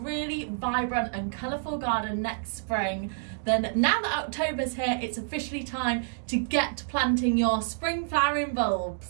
vibrant and colourful garden next spring, then now that October's here, it's officially time to get planting your spring flowering bulbs.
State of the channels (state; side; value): silent; left; digital silence